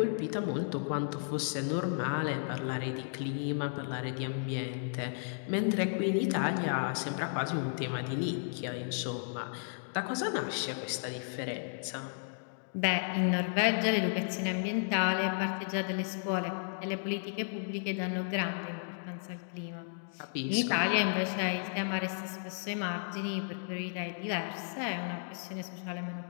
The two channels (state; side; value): silent; right; digital silence